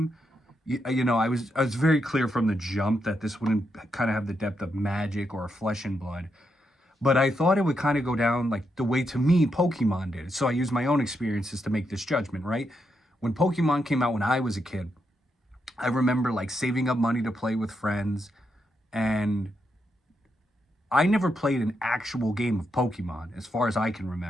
I was very clear from the jump that this wouldn't kind of have the depth of Magic or Flesh and Blood, but I thought it would kind of go down like the way, to me, Pokemon did. So I used my own experiences to make this judgment, right? When Pokemon came out when I was a kid, I remember like saving up money to play with friends, and I never played an actual game of Pokemon as far as I can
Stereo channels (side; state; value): both; normal; correlation 0.82